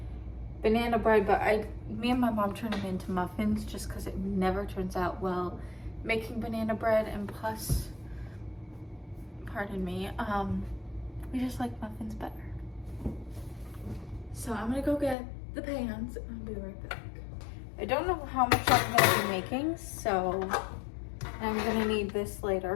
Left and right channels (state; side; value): drops out; right; at 15.2 s